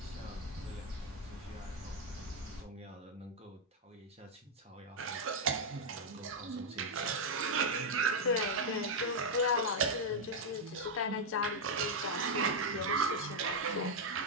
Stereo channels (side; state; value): both; normal; correlation 0.00